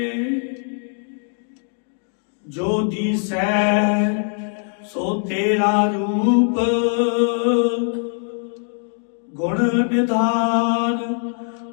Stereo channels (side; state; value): right; silent; digital silence